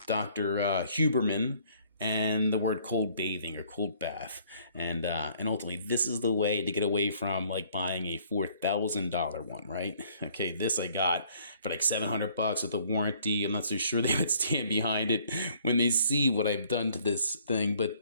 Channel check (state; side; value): inverted; both; correlation -0.61